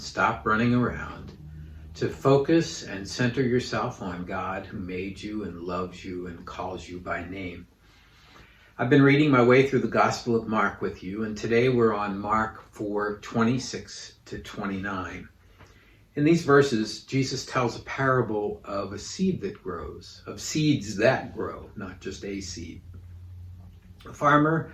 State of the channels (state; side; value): identical; both; correlation 1.00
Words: running around, to focus and center yourself on God who made you and loves you and calls you by name. I've been reading my way through the Gospel of Mark with you, and today we're on Mark 4:26 to 29. In these verses, Jesus tells a parable of a seed that grows, of seeds that grow, not just a seed. A farmer